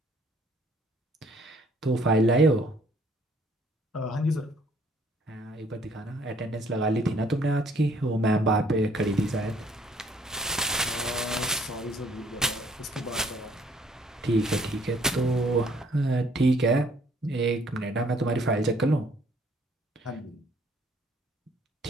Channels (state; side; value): normal; both; correlation 0.62